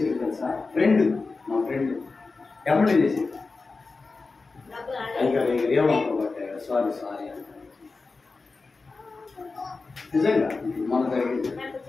తెలుసా, ఫ్రెండ్, మా ఫ్రెండ్ ఏమంటే చేసేది, అయ్యా ఏమనుకోబట్టే సారీ అంట. నిజంగా మన జరిగింది.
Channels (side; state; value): right; quieter; 4.0 dB